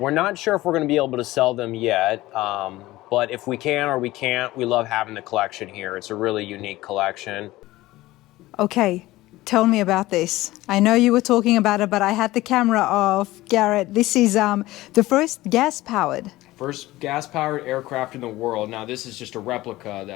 not sure if we're going to be able to sell them yet, but if we can or we can't, we love having the collection here. It's a really unique collection. Okay, tell me about this. I know you were talking about it, but I had the camera off. Garret, this is the first gas-powered. First gas-powered aircraft in the world. Now, this is just a replica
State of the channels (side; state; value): right; quieter; 17.7 dB